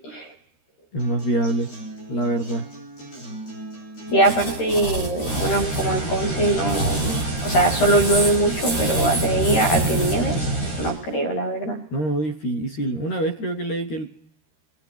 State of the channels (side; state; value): right; late; 13 ms